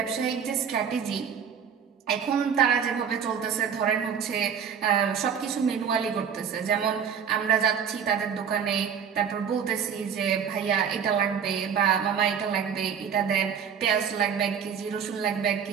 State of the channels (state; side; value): quieter; left; 7.4 dB